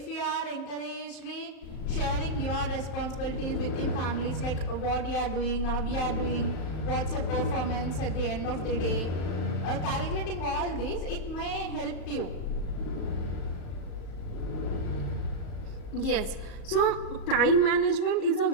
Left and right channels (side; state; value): right; late; 39 ms